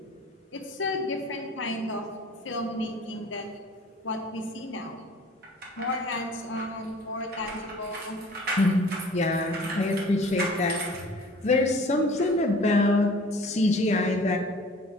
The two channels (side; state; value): both; normal; correlation 0.48